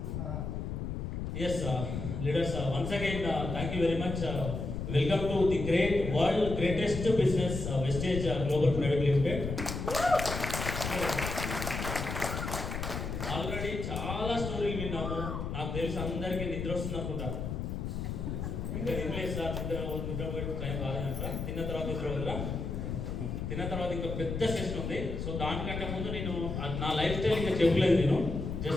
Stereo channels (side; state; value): left; noise; rumble, 4 dB below the sound